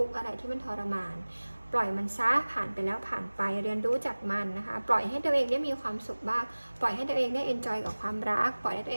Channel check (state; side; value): inverted; both; correlation -1.00